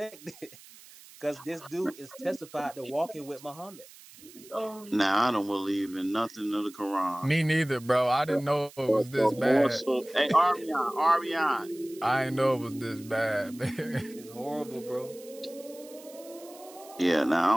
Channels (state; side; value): noise; right; hiss, 21 dB below the sound